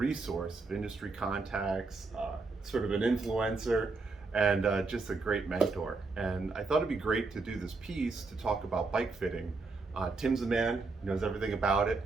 of industry contacts, sort of an influencer, and just a great mentor. And I thought it'd be great to do this piece to talk about bike fitting. Tim's a man, knows everything about it.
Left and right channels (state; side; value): quieter; left; 3.9 dB